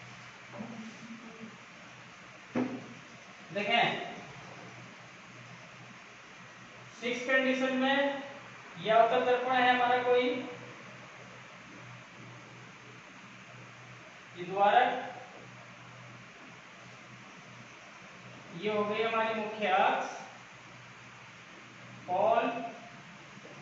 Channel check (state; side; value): identical; both; correlation 1.00